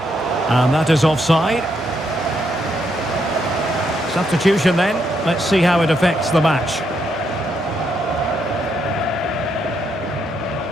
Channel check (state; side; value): normal; both; correlation 0.77